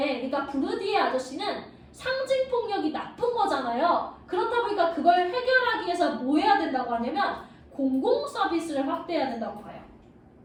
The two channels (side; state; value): both; identical; correlation 1.00